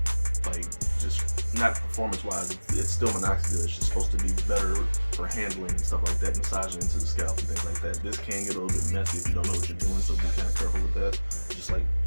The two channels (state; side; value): inverted; both; correlation -1.00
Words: like just not performance-wise. It's still minoxidil. It's just supposed to be better for handling and stuff like that, massaging into the scalp and things like that. This can get a little bit messy if you don't know what you're doing, so be kind of careful with that. Just like